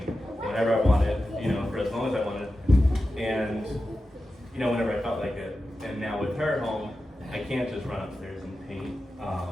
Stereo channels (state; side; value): normal; both; correlation 0.92